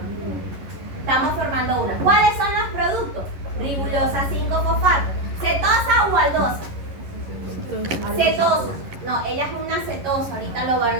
Estamos formando una. ¿Cuáles son los productos? Ribulosa 5-fosfato. ¿Cetosa o aldosa? Cetosa. No, ella es una cetosa. Ahorita lo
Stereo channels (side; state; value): left; late; 11 ms